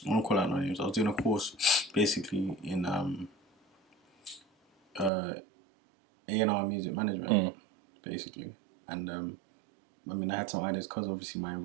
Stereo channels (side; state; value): left; drops out; at 5.1 s